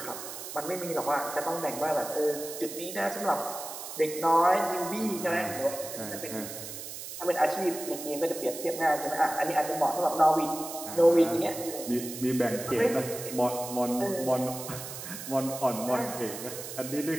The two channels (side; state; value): right; noise; hiss, 9 dB below the sound